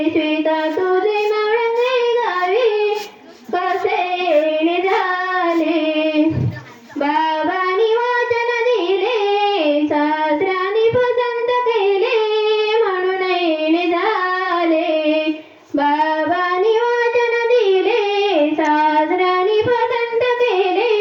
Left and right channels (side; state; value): both; identical; correlation 1.00